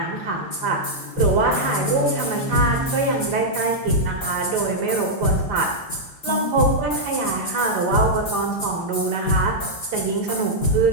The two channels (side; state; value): right; late; 5.0 ms